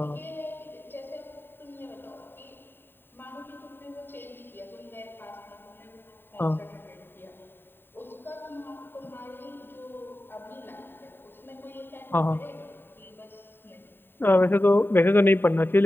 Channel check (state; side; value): late; right; 0.099 ms